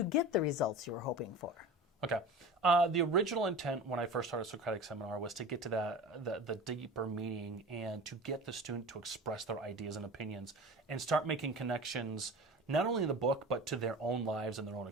get the results you were hoping for? Okay. The original intent when I first started Socratic Seminar was to get to the deeper meaning and to get the student to express their ideas and opinions and start making connections not only in the book but to their own lives and their own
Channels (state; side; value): normal; both; correlation 0.34